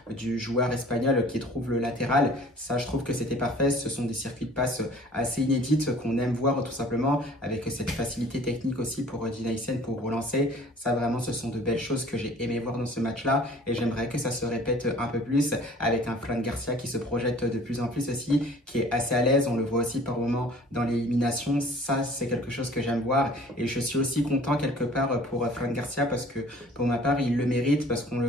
du joueur espagnol qui trouve le latéral. Ça, je trouve que c'était parfait. Ce sont des circuits de passe assez inédites qu'on aime voir tout simplement, avec cette facilité technique aussi pour Dean Huysen pour relancer. Ça, vraiment, ce sont de belles choses que j'ai aimé voir dans ce match-là. Et j'aimerais que ça se répète un peu plus avec un Fran Garcia qui se projette de plus en plus aussi, qui est assez à l'aise. On le voit aussi par moments dans l'élimination. Ça, c'est quelque chose que j'aime voir. Et je suis aussi content quelque part pour Fran Garcia parce que pour ma part il le mérite, parce qu'on le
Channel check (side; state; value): both; normal; correlation 0.50